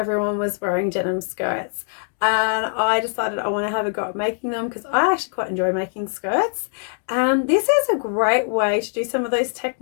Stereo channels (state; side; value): silent; right; digital silence